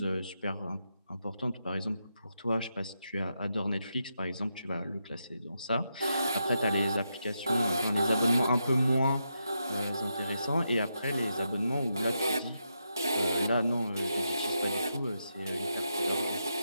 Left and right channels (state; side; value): inverted; both; correlation -0.84